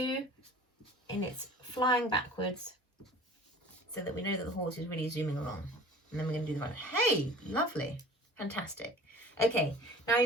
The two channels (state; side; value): normal; both; correlation 0.44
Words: and it's flying backwards so that we know that the horse is really zooming along. And then we're going to do the ride. Hey, lovely. Fantastic. Okay, now